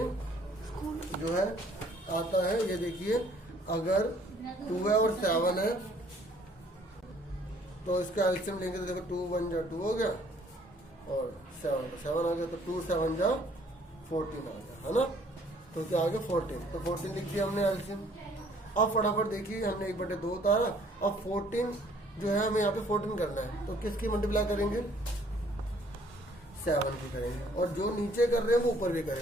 जो है आता है। ये देखिए, अगर 2 है और 7 है तो इसका एलसीएम लेंगे तो देखो 2 1 जा 2 हो गया और 7 आ गया, तो 2 7 जा 14 आ गया, है ना। तो क्या आ गया 14, तो 14 लिख दिया हमने एलसीएम। अब फटाफट देखिए, हमने 1/2 उतारा। अब 14 जो है हमें यहाँ पे 14 करना है, तो किसकी मल्टीप्लाई करेंगे, 7 की करेंगे, और जो नीचे कर रहे हैं वो ऊपर भी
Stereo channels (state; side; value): normal; both; correlation 0.60